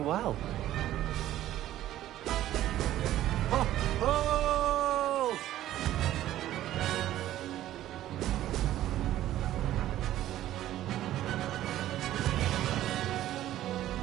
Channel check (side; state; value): left; quieter; 13.4 dB